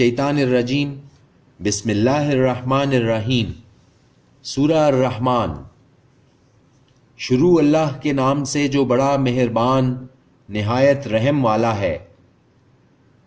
الرجیم، بسم اللہ الرحمن الرحیم۔ سورہ الرحمن۔ شروع اللہ کے نام سے جو بڑا مہربان نہایت رحم والا ہے۔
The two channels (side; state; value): both; identical; correlation 1.00